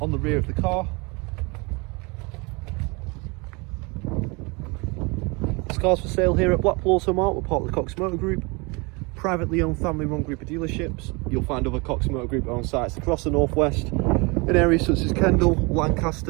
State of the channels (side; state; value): left; quieter; 28.3 dB